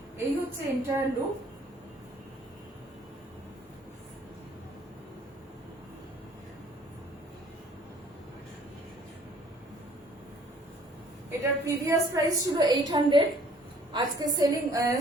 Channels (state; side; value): normal; both; correlation 0.57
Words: এই হচ্ছে এন্টায়ার লুক। এটার প্রিভিয়াস প্রাইস ছিল 800, আজকে